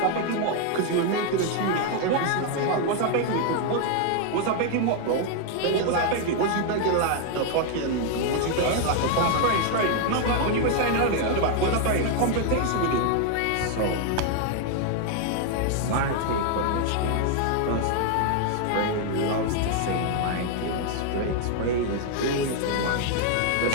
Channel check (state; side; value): different; both; correlation 0.00